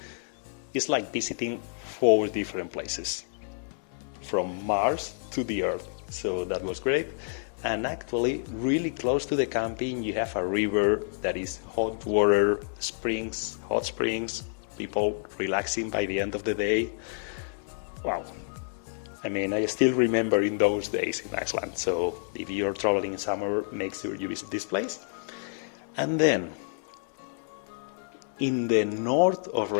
it's like visiting 4 different places from Mars to the Earth. So that was great. And actually, really close to the camping, you have a river that is hot water, springs, hot springs, people relaxing by the end of the day. Wow. I mean, I still remember in those days in Iceland. So if you're traveling in summer, make sure you visit this place. And then, in the north of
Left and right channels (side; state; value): right; silent; digital silence